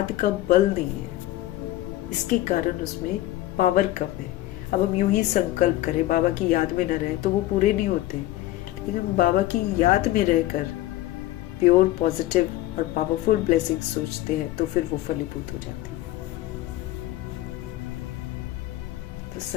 का बल नहीं है, इसके कारण उसमें पावर कम है। अब हम यूं ही संकल्प करें बाबा की याद में न रहे तो वो पूरे नहीं होते, लेकिन हम बाबा की याद में रहकर प्योर, पॉजिटिव और पावरफुल ब्लेसिंग सोचते हैं तो फिर वो फलीभूत हो जाती है। तो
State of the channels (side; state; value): right; quieter; 15.8 dB